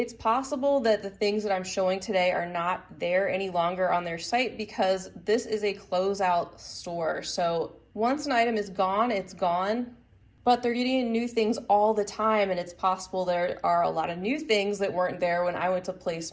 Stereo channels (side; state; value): both; identical; correlation 1.00